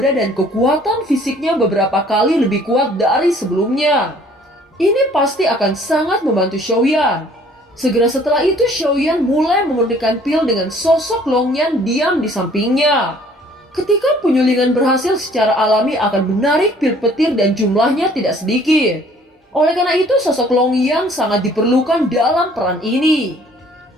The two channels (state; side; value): normal; both; correlation 0.56